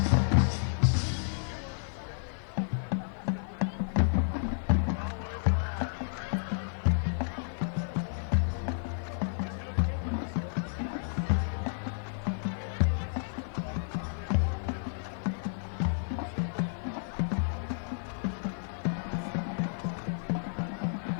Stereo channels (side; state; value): right; silent; digital silence